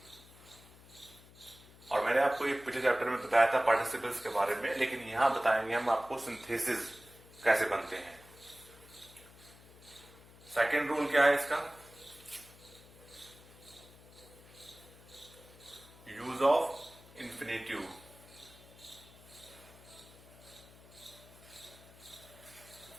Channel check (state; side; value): noise; left; hum, 22 dB below the sound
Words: और मैंने आपको ये पिछले चैप्टर में बताया था पार्टिसिपल्स के बारे में, लेकिन यहां बताएंगे हम आपको सिंथेसिस कैसे बनते हैं। सेकेंड रूल क्या है इसका, यूज ऑफ इंफिनिटिव।